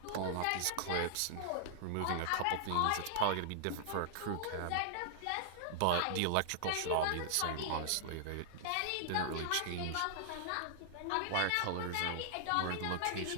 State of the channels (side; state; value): both; different; correlation -0.01